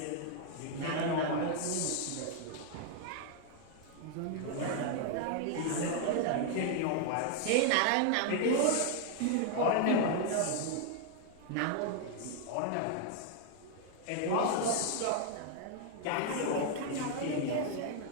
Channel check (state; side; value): different; both; correlation 0.00